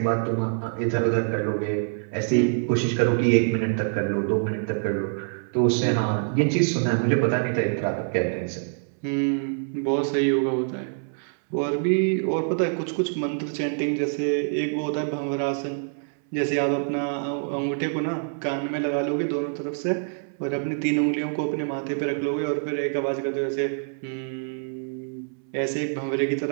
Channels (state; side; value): silent; left; 61 dB below the other